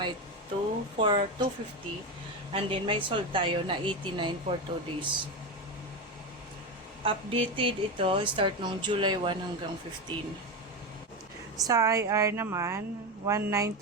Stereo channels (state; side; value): normal; both; correlation 0.16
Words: 2 for 250. And then may sold tayo na 89 for 2 days. Updated ito, start nung July 1 hanggang 15. Sa IR naman,